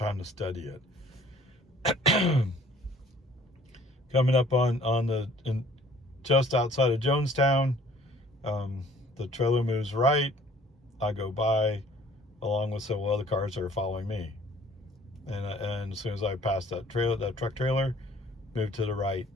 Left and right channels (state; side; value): normal; both; correlation 0.55